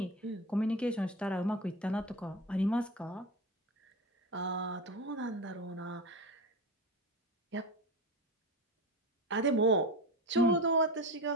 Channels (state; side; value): normal; both; correlation 0.25